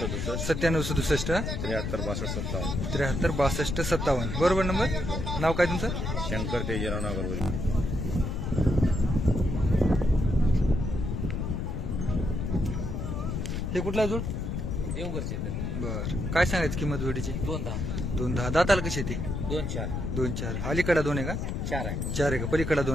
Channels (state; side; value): noise; left; rumble, 2 dB below the sound